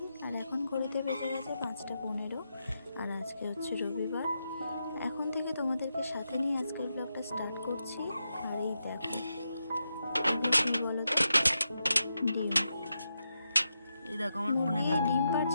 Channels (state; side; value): inverted; both; correlation -0.86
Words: আর এখন ঘড়িতে বেজে গেছে 5:15, আর আজকে হচ্ছে রবিবার। এখন থেকে তোমাদেরকে সাথে নিয়ে আজকের ব্লগটা স্টার্ট করছি। আর এই দেখো, কি বলো তো, ডিম। এই দেখো আমার ফোনে ডিম